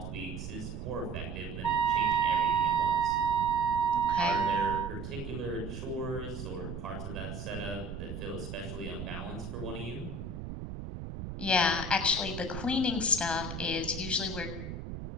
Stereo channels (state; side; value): noise; right; rumble, 7 dB below the sound